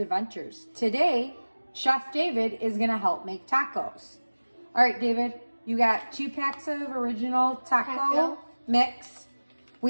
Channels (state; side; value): inverted; both; correlation -1.00